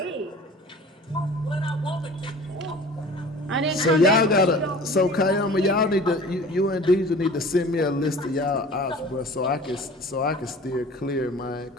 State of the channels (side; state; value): both; normal; correlation 0.43